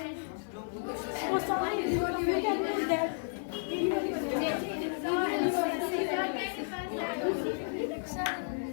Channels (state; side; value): silent; right; digital silence